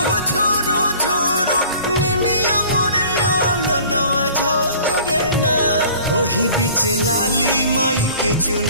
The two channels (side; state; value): both; inverted; correlation -0.48